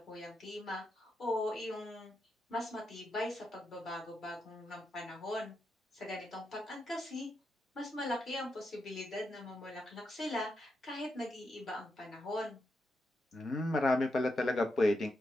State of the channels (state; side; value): normal; both; correlation 0.85